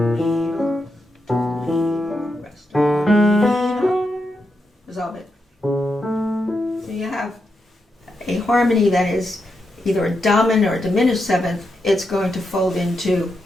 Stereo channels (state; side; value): normal; both; correlation 0.85